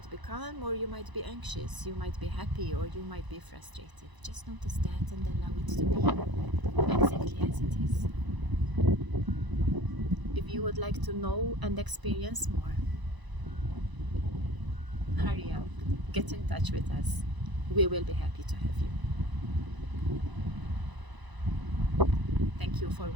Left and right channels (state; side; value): late; left; 1.0 ms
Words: be calm, or you might be anxious, you might be happy, or you might be frustrated. Just notice that and allow it to be exactly as it is. If you would like to know and experience more, hurry up, get in touch with us. We will be happy to have you. Thank you for